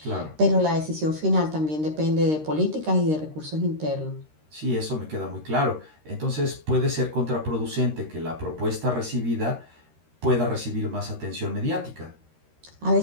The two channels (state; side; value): late; left; 13 ms